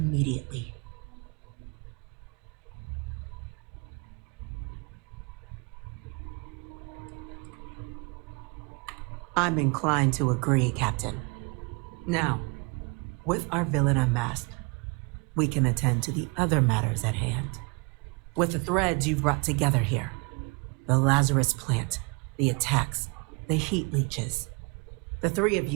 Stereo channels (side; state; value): left; quieter; 31.0 dB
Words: I'm inclined to agree, Captain. Now, with our villain unmasked, we can attend to the other matters at hand. With the threads you've brought together here, the Lazarus plant, the attacks, the heat leeches, the 3 of